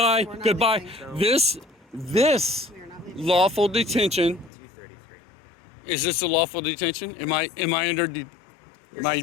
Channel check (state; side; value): drops out; right; at 4.5 s